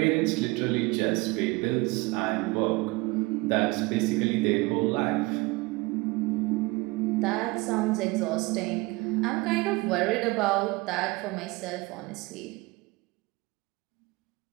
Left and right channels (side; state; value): left; quieter; 23.6 dB